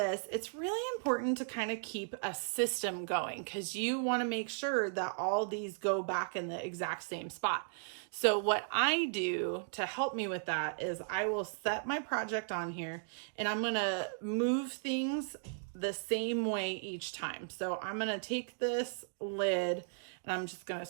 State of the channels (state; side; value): silent; left; digital silence